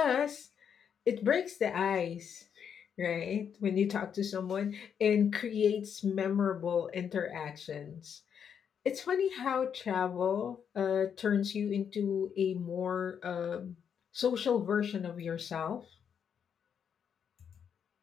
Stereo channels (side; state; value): right; quieter; 7.7 dB